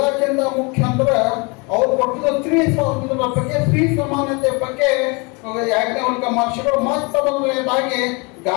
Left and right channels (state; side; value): quieter; right; 29.8 dB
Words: ಮುಖ್ಯ ಅಂದ್ರೆ ಅವ್ರು ಕೊಟ್ಟಿದ್ದ ಸ್ತ್ರೀ ಸ್ವಾತಂತ್ರ್ಯದ ಬಗ್ಗೆ, ಸ್ತ್ರೀ ಸಮಾನತೆ ಬಗ್ಗೆ ಯಾಜ್ಞವಲ್ಕ್ಯ ಮಹರ್ಷಿಗಳು ಮತ್ತ ಮೊದಲನೇದಾಗಿ